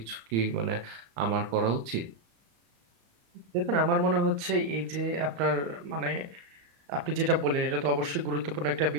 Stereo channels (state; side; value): late; left; 35 ms